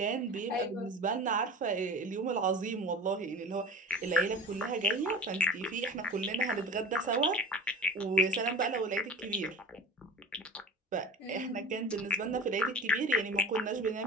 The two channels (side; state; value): both; normal; correlation 0.35